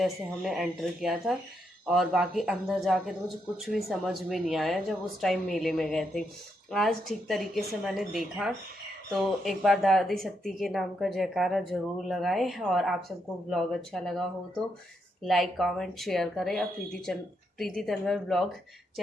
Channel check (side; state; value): both; normal; correlation 0.80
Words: हमने एंटर किया था, और बाकी अंदर जाके तो मुझे कुछ भी समझ में नहीं आया जब उस टाइम मेले में गए थे। आज ठीक तरीके से मैंने देखा, तो एक बार दादी सत्ती के नाम का जयकारा ज़रूर लगाएं। और आप सबको ब्लॉग अच्छा लगा हो तो लाइक कमेंट शेयर करें, और प्रीति तन्वर ब्लॉग